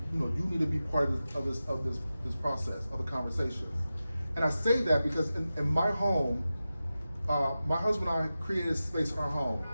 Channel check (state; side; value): inverted; both; correlation -0.94